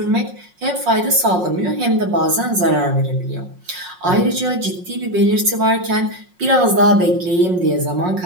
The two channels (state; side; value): late; left; 5.5 ms